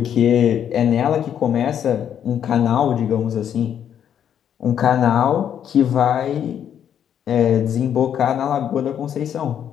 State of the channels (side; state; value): right; quieter; 9.2 dB